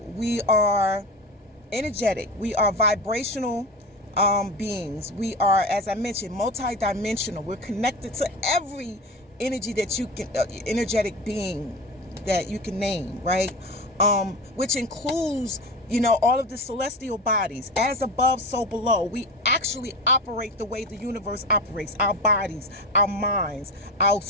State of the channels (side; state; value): both; normal; correlation 0.26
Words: are energetic. We are vibrational beings. We are, as I mentioned, multidimensional. We're connected to every energy that you can, energetic being that you can name, right? Which includes, all of the celestial bodies. As above, so below. We actually operate the way the universe operates. Our bodies, our minds, our